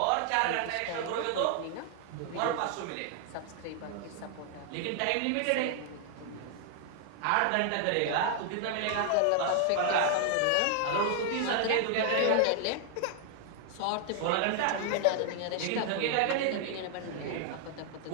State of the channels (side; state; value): both; different; correlation 0.00